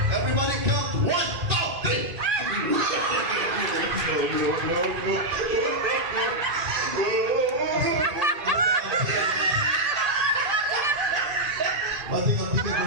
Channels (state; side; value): late; left; 1.8 ms